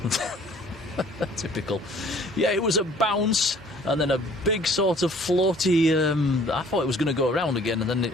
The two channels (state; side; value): normal; both; correlation 0.55